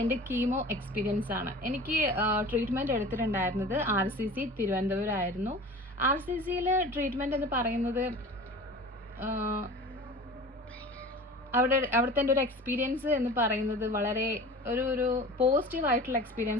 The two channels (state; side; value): normal; both; correlation 0.39